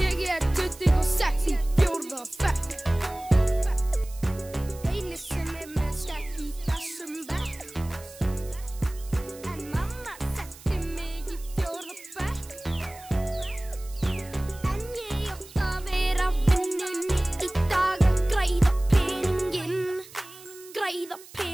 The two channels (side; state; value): right; noise; hiss, 19 dB below the sound